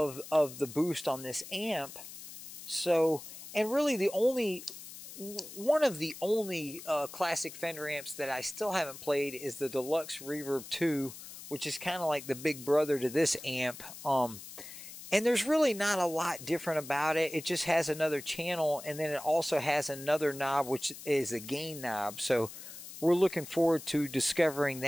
the boost on this amp. So, and really one of the only classic Fender amps that I still haven't played is the Deluxe Reverb 2, which is kind of like the big brother to this amp. And there's really not a lot different about it. It just has another channel, and then it also has another knob, which is a gain knob. So we're looking forward to discovering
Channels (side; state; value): left; noise; hiss, 13 dB below the sound